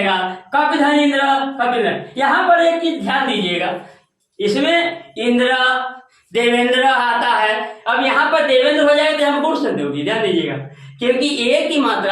कपिधनेन्द्र, कपिंद्र। यहाँ पर एक चीज ध्यान दीजिएगा, इसमें इंद्र देवेंद्र आता है, अब यहाँ पर देवेंद्र हो जाएगा तो हम गुण संधि होगी, ध्यान दीजिएगा, क्योंकि एक ही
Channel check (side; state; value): both; identical; correlation 1.00